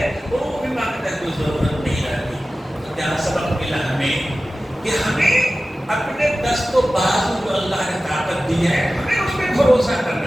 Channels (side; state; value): both; normal; correlation 0.95